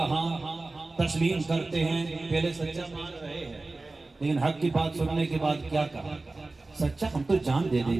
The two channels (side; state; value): left; quieter; 3.3 dB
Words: تسلیم کرتے ہیں؟ پہلے سچا مان رہے ہیں لیکن حق کی بات سننے کے بعد کیا کہا؟ سچا ہم تو جان دے